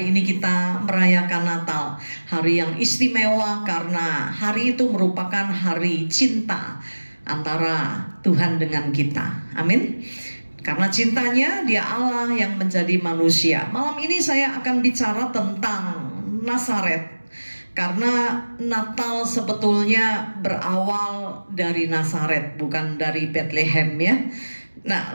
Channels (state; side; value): inverted; both; correlation -1.00